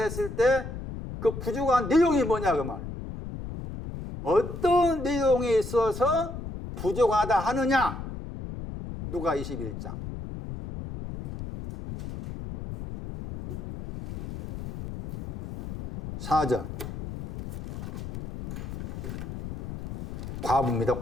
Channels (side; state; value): left; noise; rumble, 9 dB below the sound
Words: 때 그 부족한 내용이 뭐냐 그 말이에요. 어떤 내용에 있어서 부족하다 하느냐? 누가 21장. 사절. 과부입니다.